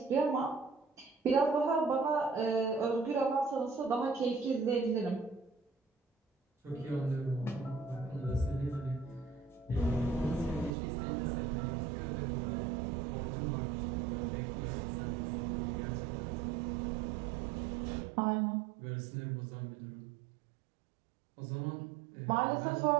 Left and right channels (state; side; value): drops out; left; at 10.8 s